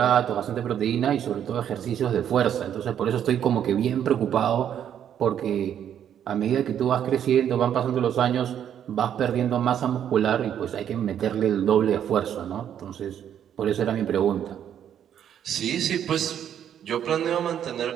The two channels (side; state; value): left; quieter; 9.6 dB